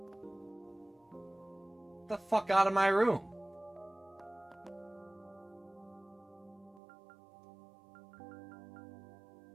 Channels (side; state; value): left; drops out; at 6.8 s